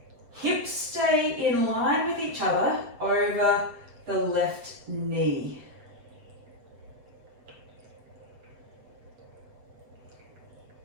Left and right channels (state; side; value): late; left; 7.7 ms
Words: Hips stay in line with each other over the left knee.